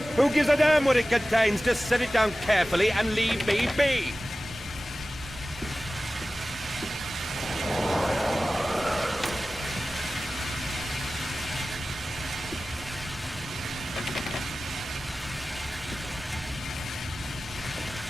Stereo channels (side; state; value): both; normal; correlation 0.96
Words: Who gives a damn what it contains? Just set it down carefully and leave me be.